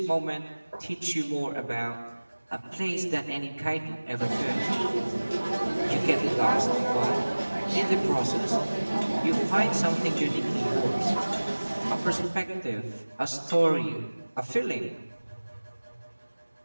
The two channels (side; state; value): both; inverted; correlation -1.00